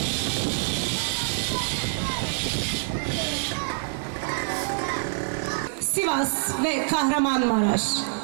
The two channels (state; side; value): silent; left; 61 dB below the other